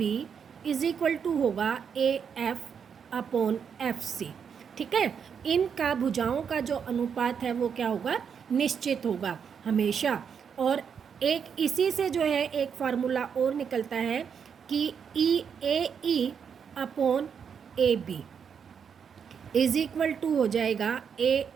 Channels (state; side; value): quieter; left; 7.0 dB